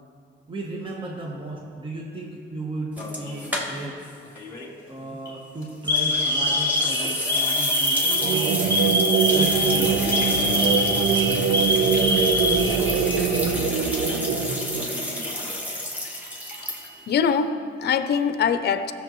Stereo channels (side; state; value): both; normal; correlation 0.04